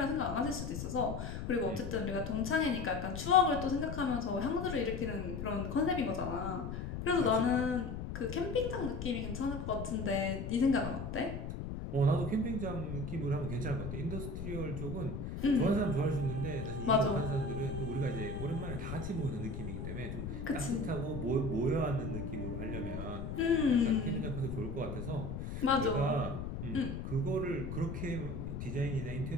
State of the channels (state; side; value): noise; left; rumble, 6 dB below the sound